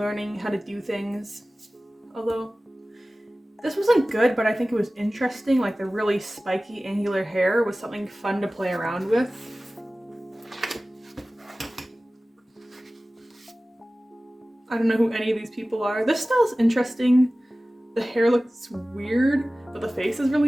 how to do things. Although, this wasn't good, but I think it was interesting. Like the really spiky, angular hair was something fun to play around with. I don't know who any of these people are. This style's interesting. The hair looks weird, but the face is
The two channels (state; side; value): normal; both; correlation 0.97